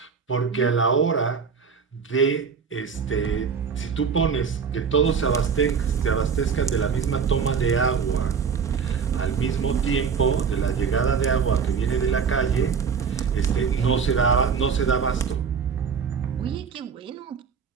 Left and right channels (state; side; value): quieter; left; 6.2 dB